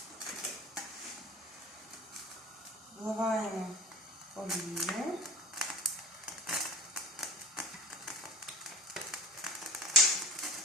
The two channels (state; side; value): normal; both; correlation 0.35